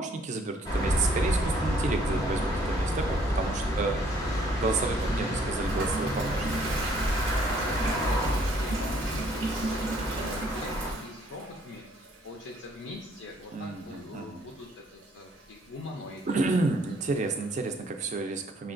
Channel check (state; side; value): normal; both; correlation 0.63